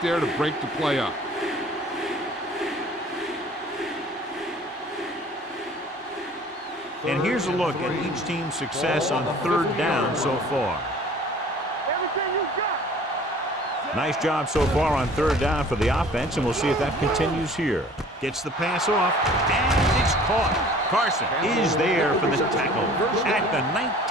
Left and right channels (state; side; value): normal; both; correlation 0.49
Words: there to break the play up. And here's a look at each team's success on third down so far. Everything you got. Nice job so far on third down for the offense, and we'll see if that continues here. Gets the pass off, and it's caught. Carson is there for the tackle at the